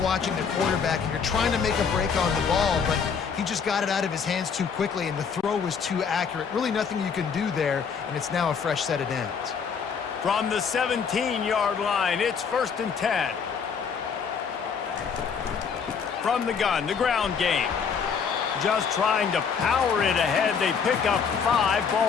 the quarterback, and you're trying to make a break on the ball, but he just got it out of his hands too quickly, and the throw was too accurate. Really nothing you can do there, and it's now a fresh set of downs. From the 17-yard line, it's 1st and 10. From the gun, the ground game. Just trying to power it ahead. They pick up 5.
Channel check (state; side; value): quieter; right; 6.3 dB